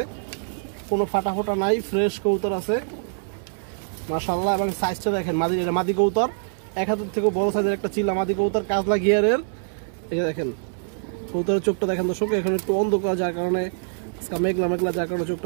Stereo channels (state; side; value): silent; left; 61 dB below the other